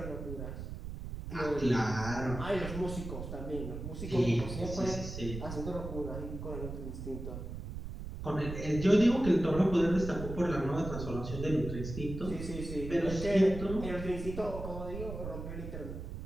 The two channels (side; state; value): right; noise; rumble, 8 dB below the sound